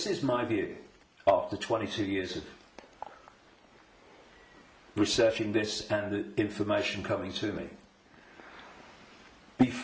is my view after 22 years of researching this and the information coming to me.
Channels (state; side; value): identical; both; correlation 1.00